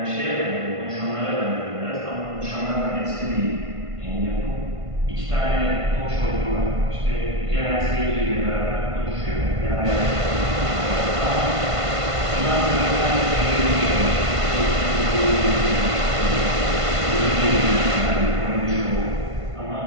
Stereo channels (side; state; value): left; late; 1.5 ms